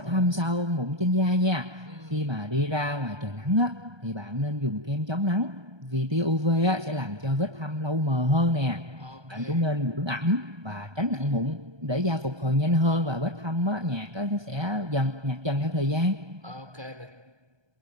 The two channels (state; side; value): late; left; 1.3 ms